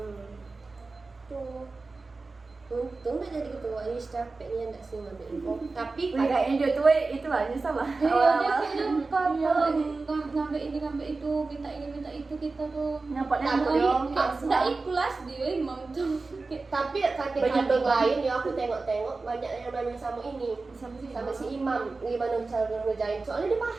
tuh untung udah jadi ketua ini capeknya enggak sih ngambil info tapi Wih, kayaknya dia tuh itu lah nyesal lah. Iya, dia Awal-awal. kayaknya kalau ngambil ini ngambil itu, minta ini minta itu kita tuh. Nyapot-nyapot Tapi- dong. Nggak ikhlas dia imam tuh. tapi cutting Banyak cutting banget. lain ya aku tengok-tengok banyak yang nanya sama ini sama si Imam gimana cara ngerjain soalnya dia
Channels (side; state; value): left; quieter; 3.7 dB